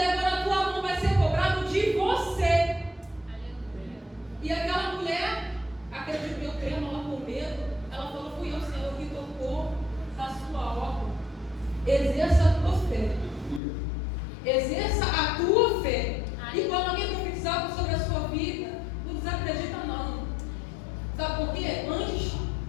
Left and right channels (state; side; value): drops out; right; at 13.6 s